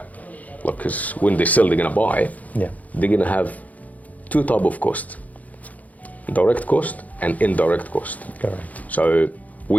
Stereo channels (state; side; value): late; right; 0.075 ms